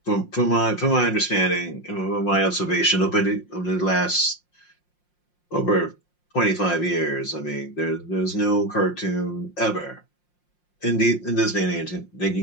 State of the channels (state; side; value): late; right; 5.6 ms